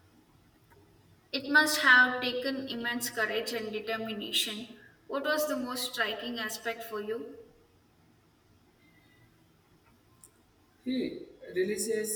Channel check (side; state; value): both; identical; correlation 1.00